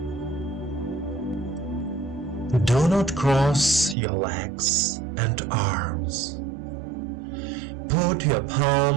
Do not cross your legs and arms. Put your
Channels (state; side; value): drops out; left; at 4.0 s